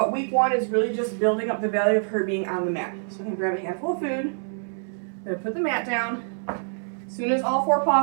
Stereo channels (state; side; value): silent; left; 61 dB below the other